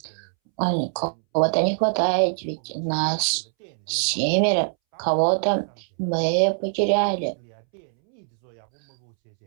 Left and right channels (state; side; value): silent; left; 62 dB below the other